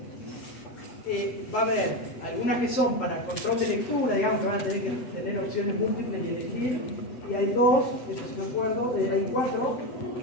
Va a haber algunas que son para control de lectura, digamos que van a tener que tener opciones múltiples y elegir. Y hay 2, eso sí me acuerdo, hay 4 o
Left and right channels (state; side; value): late; right; 8.1 ms